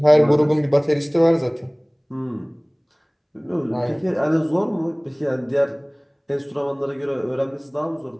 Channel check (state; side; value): identical; both; correlation 1.00